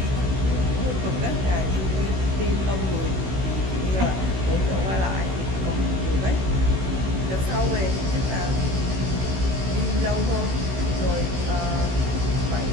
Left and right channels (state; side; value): late; left; 16 ms